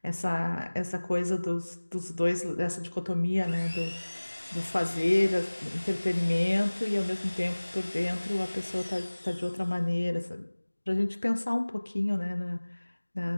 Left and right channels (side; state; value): both; inverted; correlation -1.00